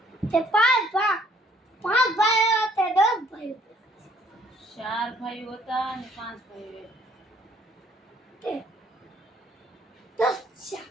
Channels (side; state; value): both; normal; correlation 0.62